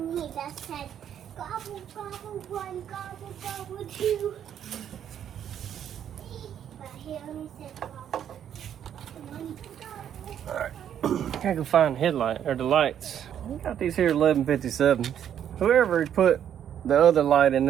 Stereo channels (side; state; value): left; quieter; 9.6 dB